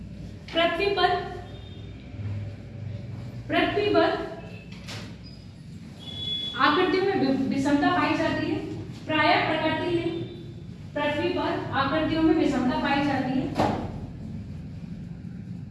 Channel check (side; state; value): both; identical; correlation 1.00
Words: पृथ्वी पर आकृति में विषमता पाई जाती है। प्राय प्रकृति में पृथ्वी पर आकृतियों में विषमता पाई जाती है।